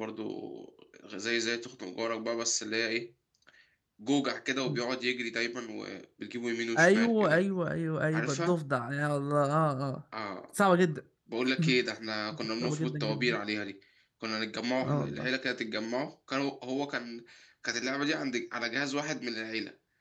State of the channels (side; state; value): both; identical; correlation 1.00